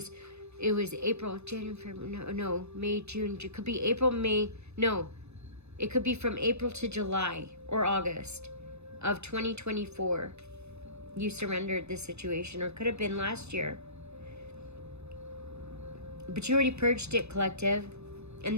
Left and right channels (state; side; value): late; left; 0.81 ms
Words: April, January, February, no, May, June, it could be April, May, no, it could be from April to July or August of 2024. You surrendered this situation, or could have been last year. But you already purged it, collective, and